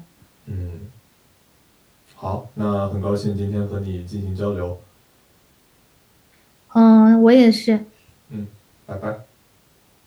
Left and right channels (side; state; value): both; identical; correlation 1.00